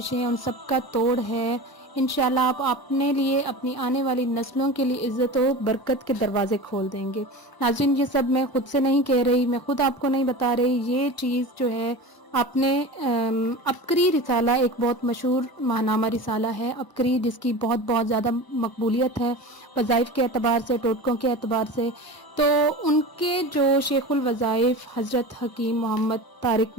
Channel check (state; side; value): late; right; 1.0 ms